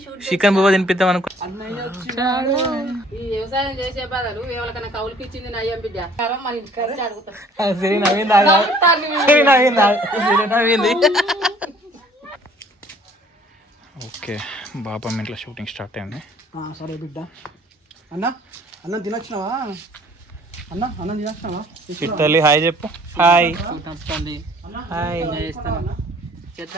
shoot chicken బువ్వ తినిపిద్దాం అనుకో. ఈ వ్యవసాయం చేసే బదులు ఎవరికైనా కౌలుకి ఇచ్చింది నయ్యం బిడ్డ మన ఇంటికి అడుగుతాం. ఓకే, బాబా ఇంట్లో షూటింగ్ స్టార్ట్ అయింది. సరే బిడ్డ. అన్నం తినొచ్చినావా? అన్నం తినొచ్చినావా? చిట్టల్లి హాయ్ చెప్పు. Hi hi.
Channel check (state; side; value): normal; both; correlation 0.56